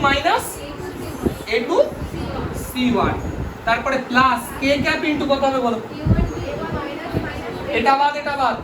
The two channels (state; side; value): identical; both; correlation 1.00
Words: minus a2 c1, তারপরে প্লাস k ক্যাপ ইনটু কত হবে বলো? এটা বাদ এটা বাদ,